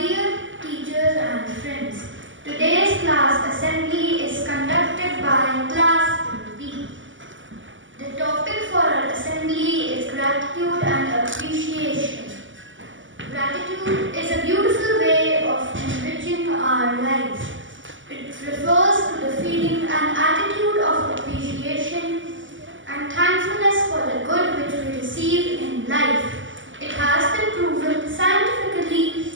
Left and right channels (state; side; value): late; left; 0.55 ms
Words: teachers and friends. Today's class assembly is conducted by Class B. The topic for our assembly is gratitude and appreciation. Gratitude is a beautiful way of enriching our lives. It refers to the feeling and attitude of appreciation and thankfulness for the good which we receive in life. It has been proven scientifically